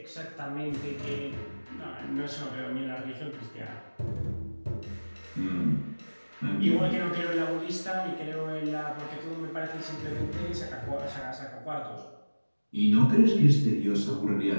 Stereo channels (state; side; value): inverted; both; correlation -1.00